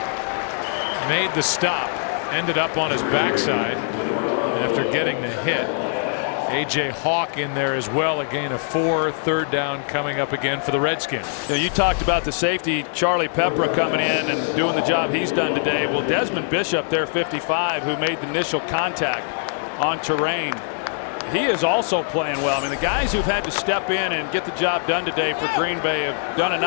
made the stop, ended up on his backside after getting the hit. A.J. Hawk in there as well, a gain of 4. 3rd down coming up again for the Redskins. You talked about the safety, Charlie Pepra, coming in and doing the job he's done today. Well, Desmond Bishop there, 55, who made the initial contact on Terrain, he is also playing well. I mean, the guys who've had to step in and get the job done today for Green Bay have done a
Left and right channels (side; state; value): right; silent; digital silence